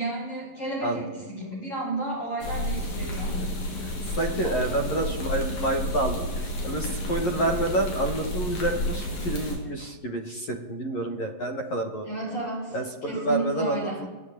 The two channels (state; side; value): late; right; 11 ms